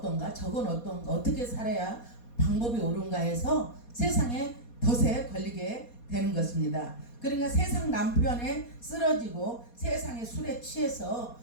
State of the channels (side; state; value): right; late; 4.2 ms